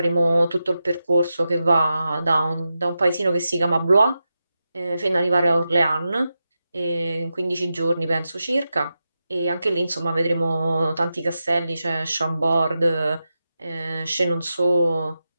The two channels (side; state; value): both; inverted; correlation -0.90